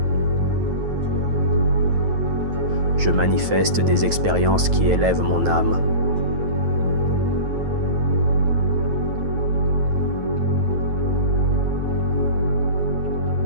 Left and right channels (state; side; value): late; left; 9.3 ms